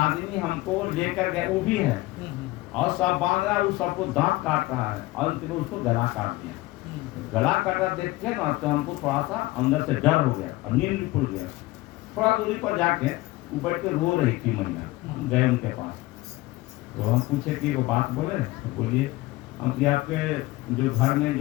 हमको लेकर गए वो भी है, और सब बांध रहा है, वो सबको दांत काट रहा है, और अंत में उसको गला काट दिया। गला काटा देख के ना तो हमको थोड़ा सा अंदर से डर हो गया और नींद भी खुल गया। थोड़ा दूरी पर जाके वो बैठ के रो रही थी महिला, गए उनके पास। तो हम पूछे कि वो बात बोले, तो बोलिए हम कि आपके जो घर में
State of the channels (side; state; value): right; quieter; 19.7 dB